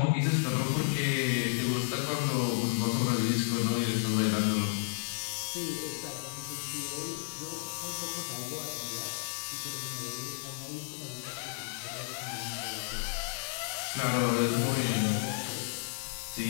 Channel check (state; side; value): silent; right; digital silence